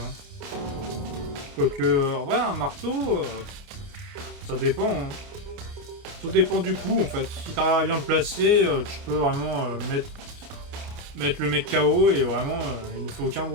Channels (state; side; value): late; left; 29 ms